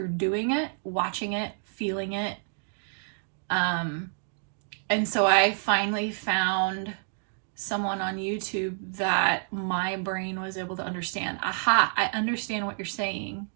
doing it, watching it, feeling it. And so I finally found someone on YouTube that my brain was able to understand. Aha, I understand what you're saying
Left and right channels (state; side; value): silent; left; digital silence